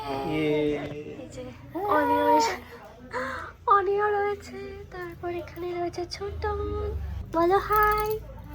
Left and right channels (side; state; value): both; identical; correlation 1.00